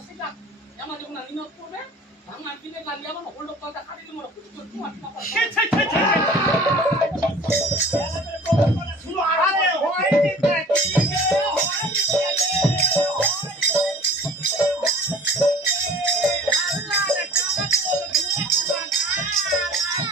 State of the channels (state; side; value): normal; both; correlation 0.45